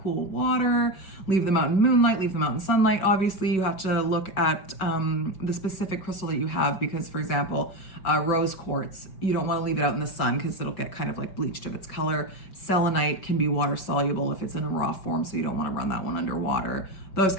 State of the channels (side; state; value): right; late; 5.3 ms